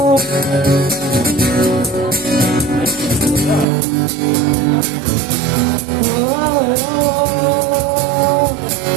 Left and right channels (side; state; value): left; drops out; at 3.7 s